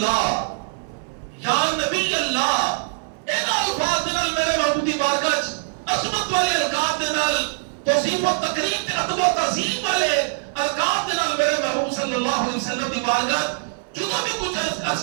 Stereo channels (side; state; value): left; silent; 64 dB below the other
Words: یا نبی اللہ اینا الفاظ نال میرے محبوب دی بارگاہ عظمت والے القاب دے نال توصیف و تکریم تے ادب و تعظیم والے القاب دے نال میرے محبوب صلی اللہ علیہ وسلم دی بارگاہ جدوں بھی کچھ